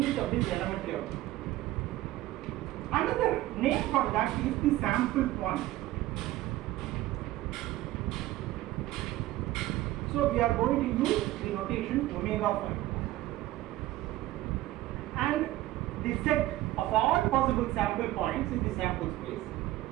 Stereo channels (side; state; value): left; quieter; 16.2 dB